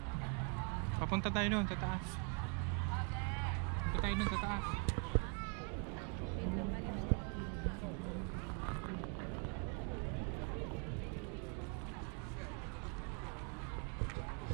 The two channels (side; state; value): left; quieter; 36.4 dB